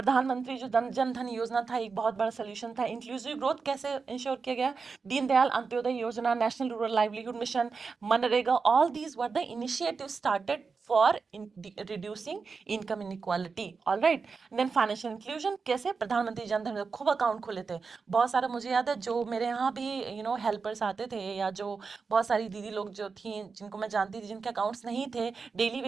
जो जन धन योजना था, एक बहुत बड़ा सोल्यूशन था। इंक्लूसिव ग्रोथ कैसे इंश्योर किया गया? Deendayal Antyodaya Yojana, national rural livelihood mission, MNREGA, all these were the initiative started for reducing income inequality. All right. Then financial inclusion कैसे? प्रधानमंत्री जन धन में खूब अकाउंट खोले थे बहुत सारे। मुझे याद है जो मेरे यहाँ भी हेल्पर्स आते थे, या जो बहुत सारी दीदी लोग जो थी जिनको मैं जानती थी, जिनके अकाउंट्स नहीं थे, डेली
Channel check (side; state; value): left; quieter; 4.9 dB